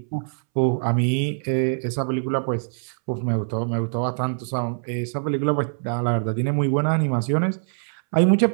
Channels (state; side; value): silent; left; 63 dB below the other